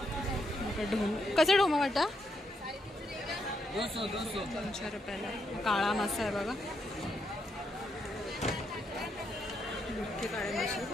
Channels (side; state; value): both; normal; correlation 0.79